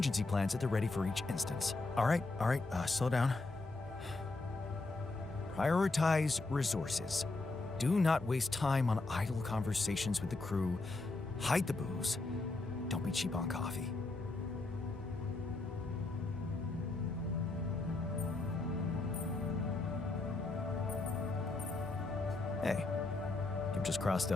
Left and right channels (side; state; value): right; quieter; 3.3 dB